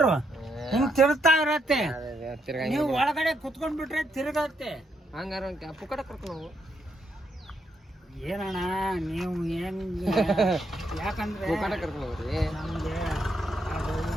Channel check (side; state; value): both; normal; correlation 0.77